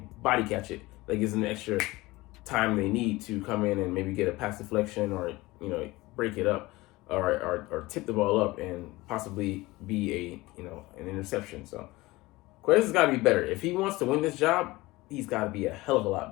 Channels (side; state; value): right; quieter; 20.3 dB